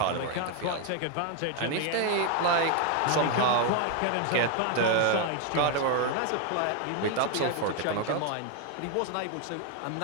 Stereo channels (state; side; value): different; both; correlation 0.01